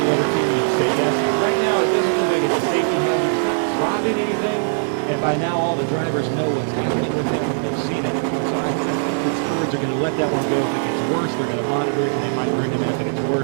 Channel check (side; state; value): left; silent; digital silence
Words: other team, you'd say yes. But right now, it doesn't look like it's a safety hazard. It's not dropping anything, and by now all the drivers know what's happening with him, and they've seen it. So I think the stewards are going to let that one go. If it gets worse, they're going to monitor it, and they might bring him in if it gets